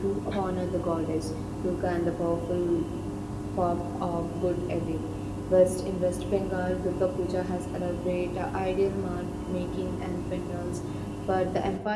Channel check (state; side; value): identical; both; correlation 1.00